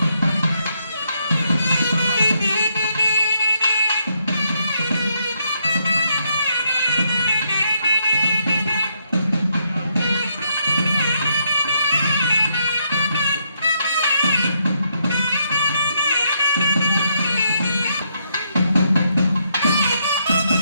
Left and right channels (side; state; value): both; inverted; correlation -0.76